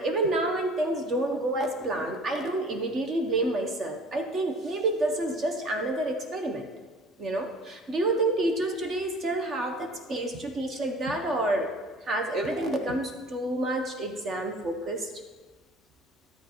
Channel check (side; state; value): both; normal; correlation 0.46